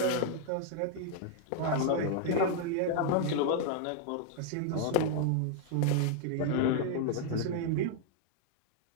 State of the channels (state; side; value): different; both; correlation 0.00